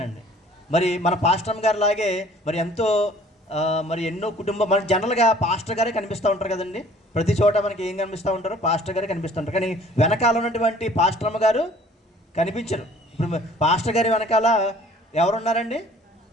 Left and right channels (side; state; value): both; normal; correlation 0.53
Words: మరి మన పాస్టర్ అమ్మగారు లాగే మరి ఎంతో మరి ఎన్నో కుటుంబం, మన జనరల్గా పాస్టర్ గారే కనిపిస్తూ ఉంటారు కదండి. ప్రతి చోట మనకి ఏం కనిపిస్తూ ఉంటారు, పాస్టర్ గారే కనిపిస్తూ ఉంటారు. కానీ వెనకాల ఉన్నటువంటి పాస్టర్ అమ్మగారు కనిపించరు. ఇప్పుడు పాస్టర్ గారి వెనకాల ఎవరున్నారండి,